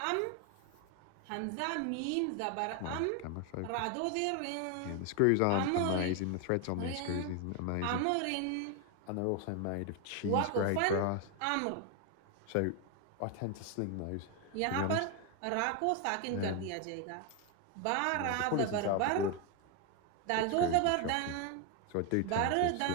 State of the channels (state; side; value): different; both; correlation 0.01